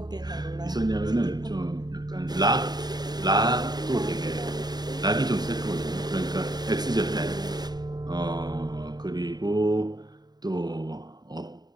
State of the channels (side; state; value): left; late; 0.20 ms